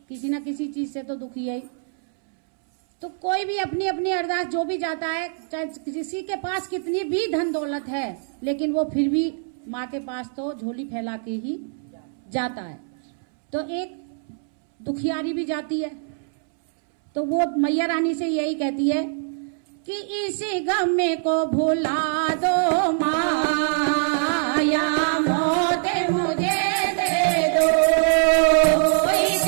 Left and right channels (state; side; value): silent; left; 63 dB below the other